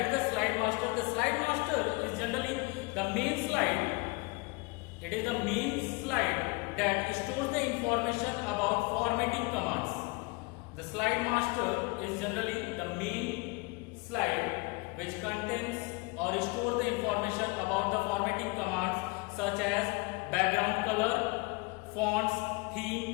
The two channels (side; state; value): right; quieter; 27.3 dB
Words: is the slide master. The slide master is generally the main slide. It is the main slide that stores the information about formatting commands. The slide master is generally the main slide which contains or stores the information about the formatting commands such as background color, fonts,